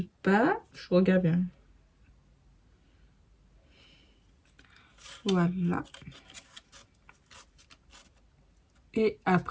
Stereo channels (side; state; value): both; identical; correlation 1.00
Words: bas. Je regarde bien. Voilà. Et